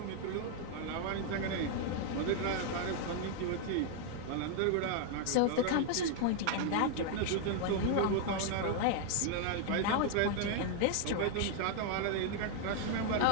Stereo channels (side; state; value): both; different; correlation 0.00